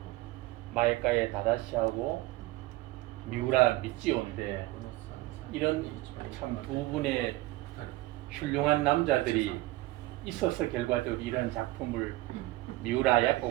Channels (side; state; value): left; quieter; 19.1 dB